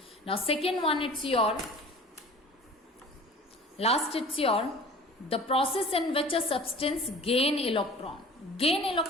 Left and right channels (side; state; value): both; normal; correlation 0.44